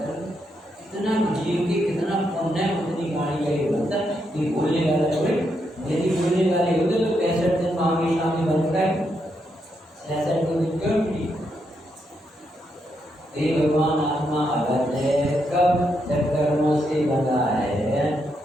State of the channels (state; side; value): normal; both; correlation 0.80